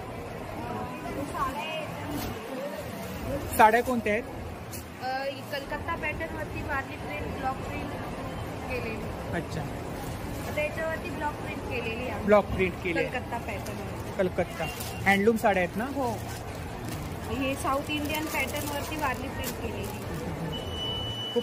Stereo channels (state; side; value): identical; both; correlation 1.00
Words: साड्या कोणत्या आहेत? कलकत्ता पॅटर्न वरती वारली प्रिंट, ब्लॉक प्रिंट केलेली. अच्छा, आता याच्यावरती ब्लॉक प्रिंट केलेली आहे. ब्लॉक प्रिंट केली. कलकत्ता पॅटर्न. कलकत्ता हँडलूम साड्या आहेत ना? हो. हे साऊथ इंडियन पॅटर्न वरती वारली प्रिंट केलेली.